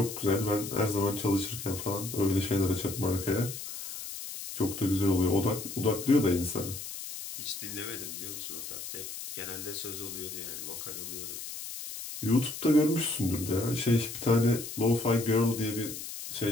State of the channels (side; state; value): left; noise; hiss, 9 dB below the sound